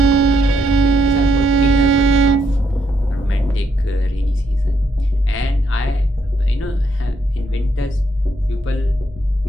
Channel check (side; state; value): both; normal; correlation 0.75